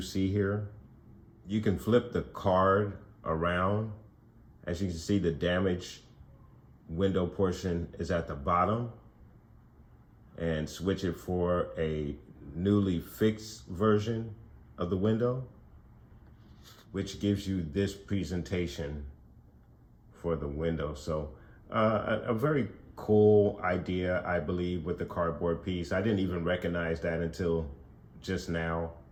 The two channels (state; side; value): identical; both; correlation 1.00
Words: here, you can flip the card around. As you can see, the damaged window portion is at the bottom, and switch it for a newly fixed version of the window, which gives you this presentation for the window. So a very cool idea, I believe, with the cardboard piece. I didn't even recognize that until just now,